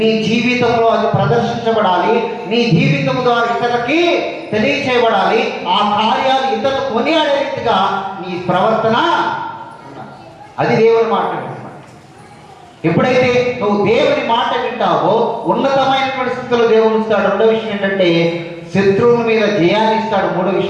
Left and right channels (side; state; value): both; identical; correlation 1.00